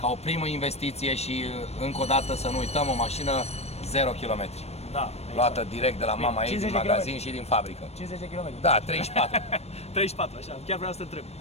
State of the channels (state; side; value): late; right; 0.31 ms